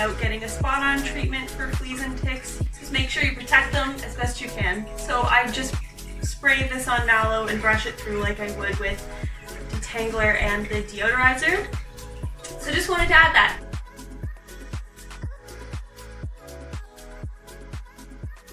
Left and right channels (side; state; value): both; identical; correlation 1.00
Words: getting a spot-on treatment for fleas and ticks. Just make sure you protect them as best you can. So I just spray this on Mallow and brush it through like I would with Detangler and the Deodorizer. So just wanted to add that.